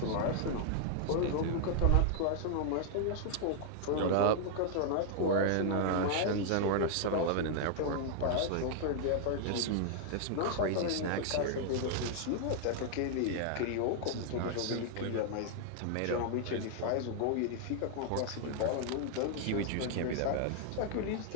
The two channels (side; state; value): both; different; correlation 0.00